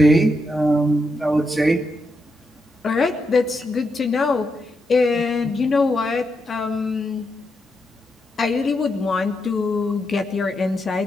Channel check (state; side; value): normal; both; correlation 0.83